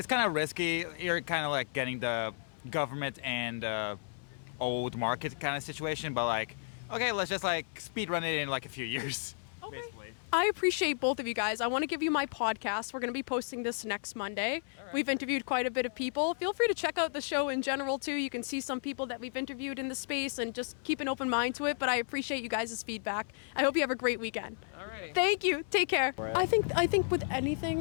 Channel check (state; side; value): silent; right; 56 dB below the other